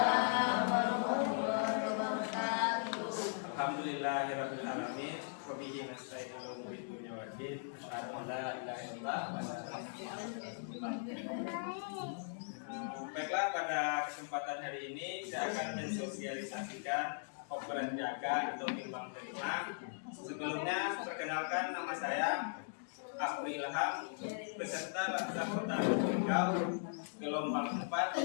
warahmatullahi wabarakatuh. Alhamdulillahirabbil alamin. Wa bihi nasta'in 'ala umuri dunya waddin. Asyhadu an la ilaha illallah wa asyhadu anna Muhammadan rasulullah. Baiklah, pada kesempatan hari ini saya akan mensosialisasikan operan jaga atau timbang terima. Sebelumnya perkenalkan, nama saya Afri Ilham, peserta Laskar Kota Riau, gelombang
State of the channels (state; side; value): silent; right; digital silence